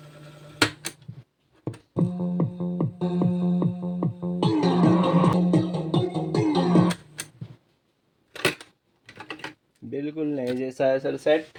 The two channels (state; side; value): identical; both; correlation 1.00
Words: बिल्कुल नए जैसा है सर सेट,